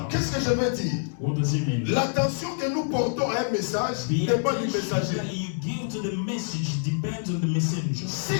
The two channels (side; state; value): right; silent; digital silence